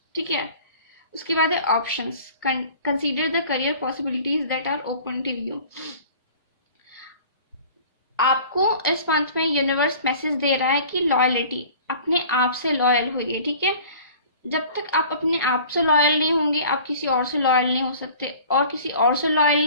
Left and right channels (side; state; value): both; inverted; correlation -0.46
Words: ठीक है। उसके बाद है options, consider the career possibilities that are open to you. आपको इस मंथ में यूनिवर्स मैसेज दे रहा है कि लॉयलिटी, अपने आप से लॉयल होइए, ठीक है। जब तक आप अपने आप से लॉयल नहीं होंगे आप किसी और से लॉयल नहीं हो सकते, और किसी और से लॉयल